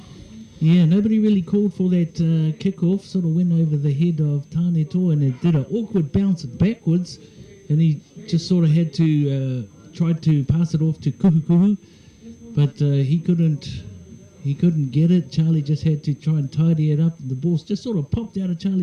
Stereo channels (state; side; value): identical; both; correlation 1.00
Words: Yeah, nobody really called for that kick-off. Sort of went over the head of Tāneto, and it did an awkward bounce backwards, and he just sort of had to try to pass it off to Kuhu, but he couldn't get it. Charlie just had to try and tidy it up. The ball just sort of popped out of